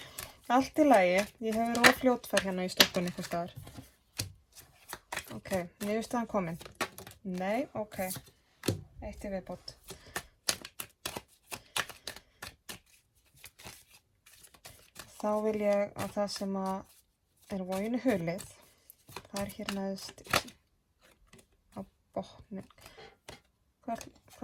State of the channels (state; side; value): identical; both; correlation 1.00